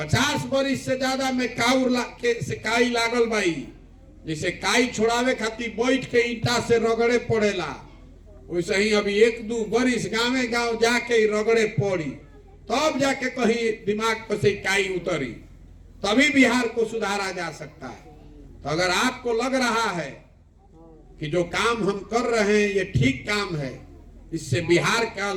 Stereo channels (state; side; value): identical; both; correlation 1.00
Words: वर्ष से ज्यादा में काई लागल बाई, जैसे काई छोड़ावे खातिर बैठ के ईटा से रगड़े पड़ेला, वैसे ही अभी 1-2 वर्ष गाँव गाँव जाके रगड़े पड़ी, तब जाके कहीं दिमाग पर से काई उतरी, तभी बिहार को सुधारा जा सकता है। तो अगर आपको लग रहा है कि जो काम हम कर रहे हैं ये ठीक काम है, इससे बिहार का